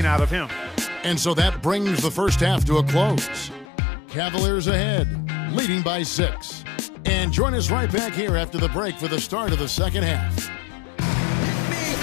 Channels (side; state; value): right; drops out; at 3.7 s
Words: out of him. And so that brings the first half to a close. Cavaliers ahead, leading by 6. And join us right back here after the break for the start of the second half.